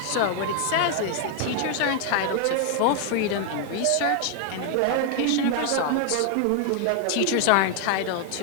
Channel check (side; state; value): both; different; correlation 0.00